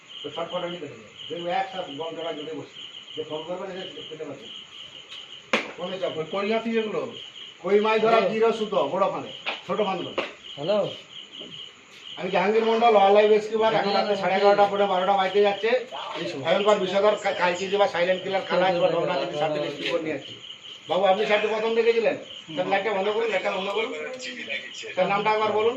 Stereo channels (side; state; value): both; identical; correlation 1.00